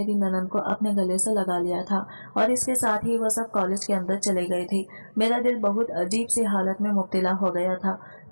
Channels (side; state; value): both; inverted; correlation -1.00